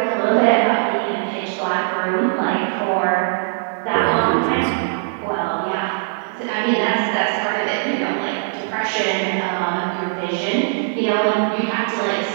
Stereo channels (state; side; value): silent; left; digital silence